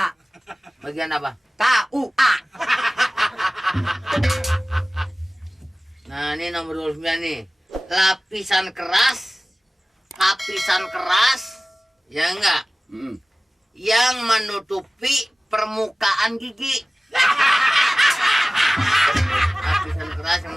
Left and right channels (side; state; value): both; normal; correlation 0.98